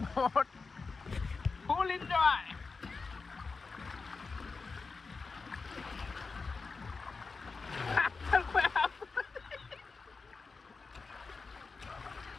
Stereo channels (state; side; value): quieter; right; 4.4 dB